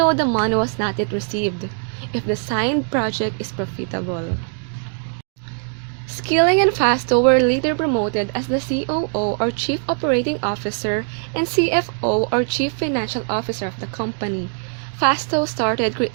the money was not yet received, if the signed project is profitable. Skilling and Fastow were later promoted as the COO, or Chief Operating Officer, and CFO, or Chief Financial Officer of the company. Fastow started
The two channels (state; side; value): silent; left; 59 dB below the other